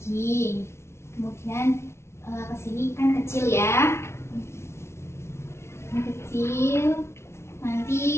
Kemudian ke sini kan kecil ya. Ini kecil. Nanti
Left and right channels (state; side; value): late; right; 0.13 ms